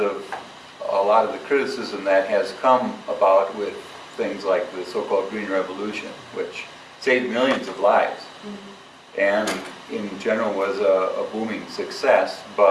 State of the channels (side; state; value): both; identical; correlation 1.00